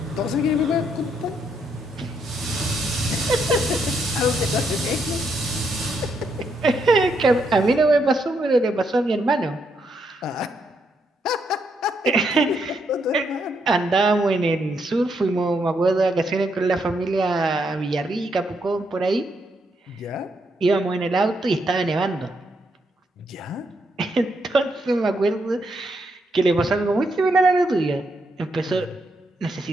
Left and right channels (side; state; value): both; normal; correlation 0.77